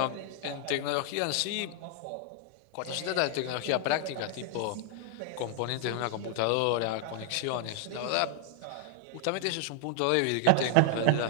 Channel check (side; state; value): both; different; correlation 0.00